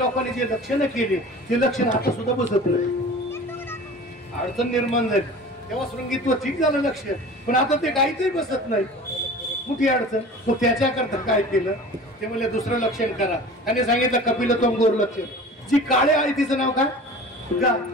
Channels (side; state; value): both; normal; correlation 0.40